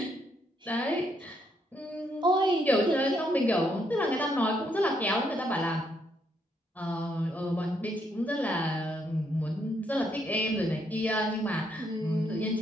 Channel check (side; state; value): both; normal; correlation 0.74